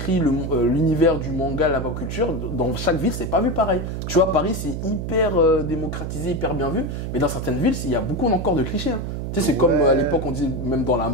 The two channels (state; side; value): noise; right; hum, 4 dB below the sound